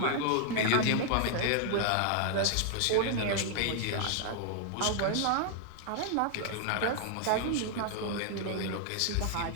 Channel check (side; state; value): both; different; correlation 0.00